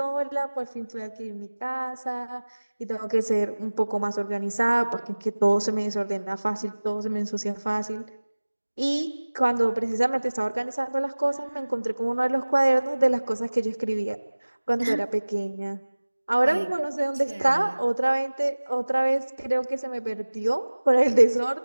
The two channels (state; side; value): inverted; both; correlation -1.00